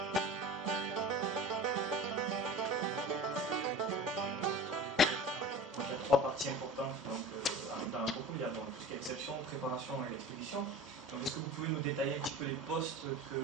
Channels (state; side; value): normal; both; correlation 0.37